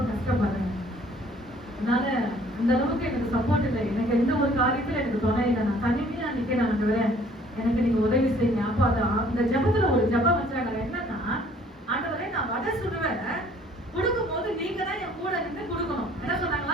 கஷ்டப்படுறேன், அதனால அந்த அளவுக்கு எனக்கு சப்போர்ட் இல்லை, எனக்கு எந்த ஒரு காரியத்துல எனக்கு துணை இல்லை, நான் தனிமையா நிக்கிறேன், ஆண்டவரே எனக்கு நீங்க உதவி செய்யுங்க. அப்போ அந்த ஜபத்துல ஒரு ஜபம் வச்சாங்க. என்னன்னா, ஆண்டவரே நான் வடை சுடுவேன், கொடுக்கும் போது நீங்க தான் என் கூட இருந்து கொடுக்கணும். என்ன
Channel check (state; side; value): normal; both; correlation 0.57